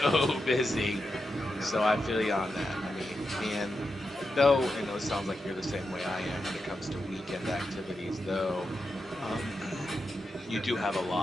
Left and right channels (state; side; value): normal; both; correlation 0.87